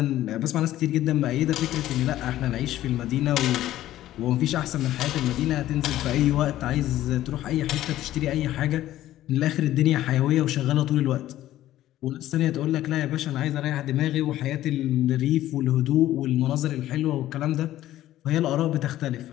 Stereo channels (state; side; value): quieter; right; 13.9 dB